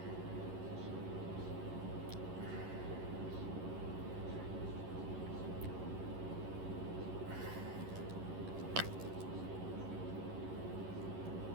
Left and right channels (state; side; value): late; left; 11 ms